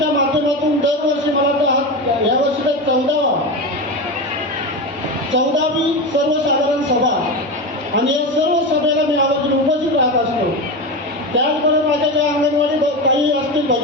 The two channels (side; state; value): both; normal; correlation 0.20